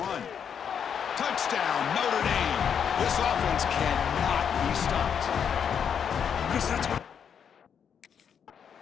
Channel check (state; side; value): quieter; right; 7.7 dB